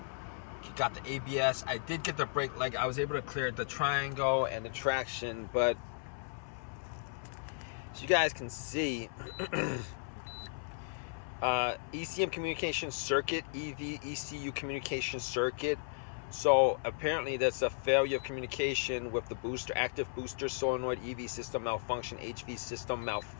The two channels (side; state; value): right; silent; 54 dB below the other